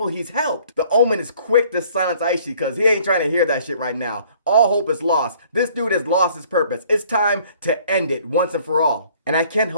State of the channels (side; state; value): both; inverted; correlation -0.57